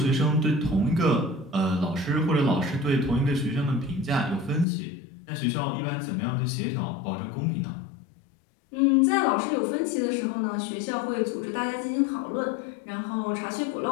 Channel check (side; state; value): right; drops out; at 4.7 s